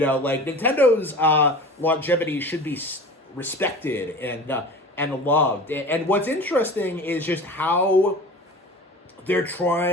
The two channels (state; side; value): normal; both; correlation 0.37